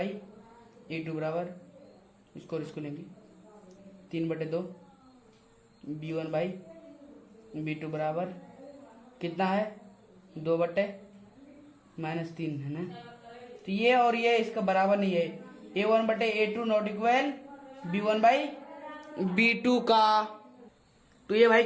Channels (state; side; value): identical; both; correlation 1.00